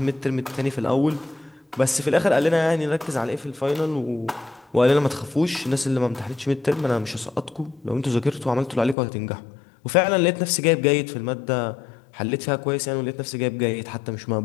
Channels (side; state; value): right; drops out; at 9.0 s